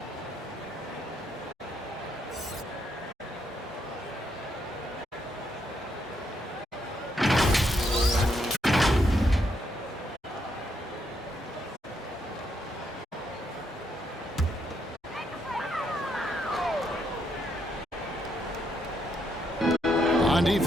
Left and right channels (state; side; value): normal; both; correlation 0.76